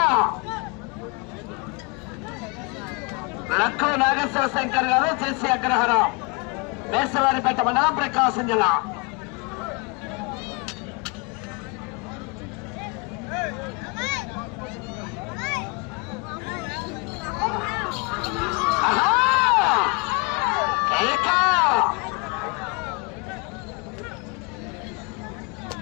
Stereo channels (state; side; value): quieter; right; 31.0 dB